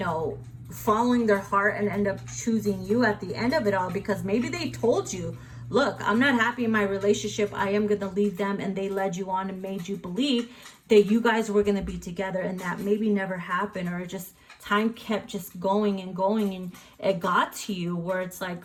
following their heart and end up choosing you at the end of it all, because maybe they told you, look, I'm not happy in my relationship, I am going to leave them, and they led you on and made you believe that you guys were going to be together, and that maybe never happened, or just time kept just going and going, and it got to you where it's like,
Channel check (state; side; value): identical; both; correlation 1.00